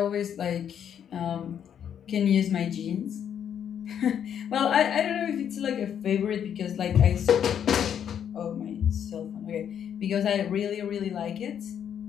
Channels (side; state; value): right; quieter; 8.8 dB